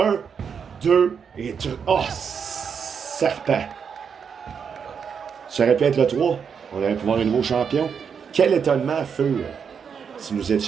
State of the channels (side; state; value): left; quieter; 6.7 dB